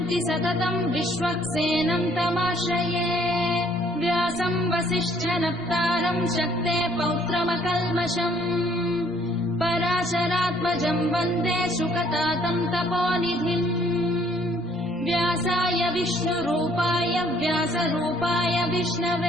सततं विश्वक्सेनं तमाश्रये व्यासं वसिष्ठनप्तारं शक्ते पौत्रमकल्मषम् पराशरात्मजं वन्दे शुकतातं तपोनिधिम् व्यासाय विष्णुरूपाय व्यासरूपाय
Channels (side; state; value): both; normal; correlation 0.62